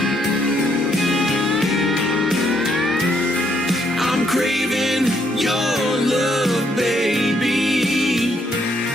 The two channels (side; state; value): both; normal; correlation 0.72